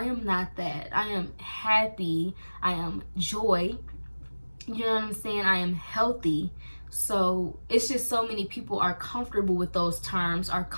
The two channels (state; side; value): inverted; both; correlation -1.00